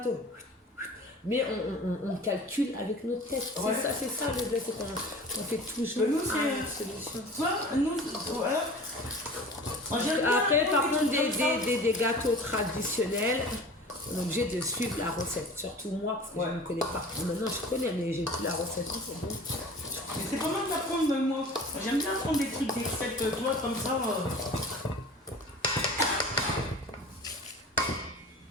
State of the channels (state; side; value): normal; both; correlation 0.41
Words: Mais on calcule avec notre tête. Ouais. C'est ça le bled, c'est qu'on fait toujours nous, une solution. Voilà. Après, par contre, des gâteaux traditionnels, on est obligé de suivre la recette. Surtout moi, parce que je ne connais pas. Maintenant, je connais, mais j'ai plus la recette. C'est bon. Mais c'est pas mal d'apprendre, moi. J'aime bien apprendre des trucs, des recettes, toi, comme ça.